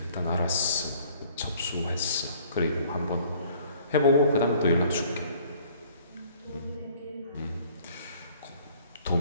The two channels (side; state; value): both; inverted; correlation -0.56